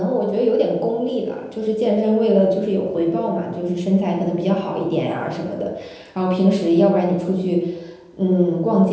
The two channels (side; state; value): both; identical; correlation 1.00